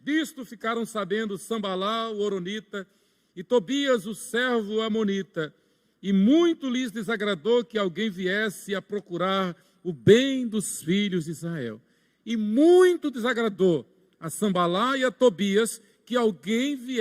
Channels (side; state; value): both; identical; correlation 1.00